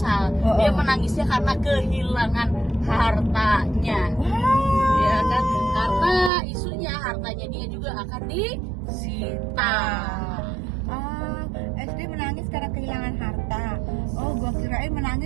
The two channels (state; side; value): drops out; left; at 6.3 s